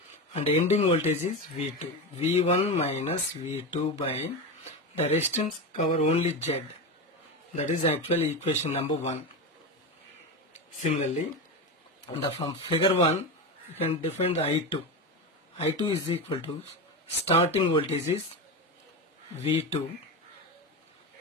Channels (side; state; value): both; normal; correlation 0.19